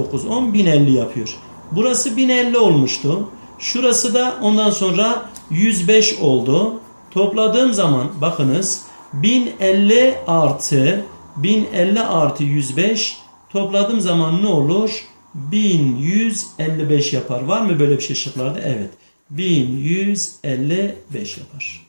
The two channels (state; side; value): inverted; both; correlation -1.00